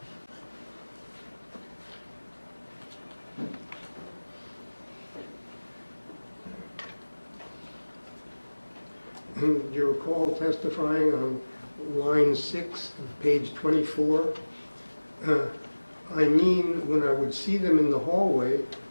Do you recall testifying on line 6 of page 24? I mean, when I would see them in the hallway,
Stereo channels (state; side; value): inverted; both; correlation -1.00